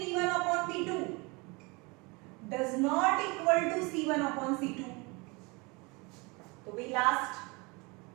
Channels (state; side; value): quieter; left; 27.2 dB